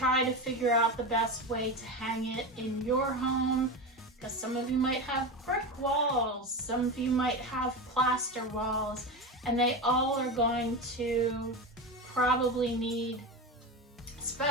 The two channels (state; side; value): normal; both; correlation 0.21